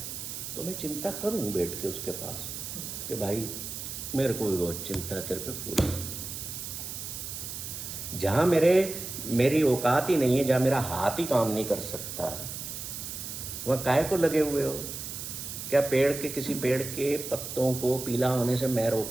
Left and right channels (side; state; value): right; noise; hiss, 7 dB below the sound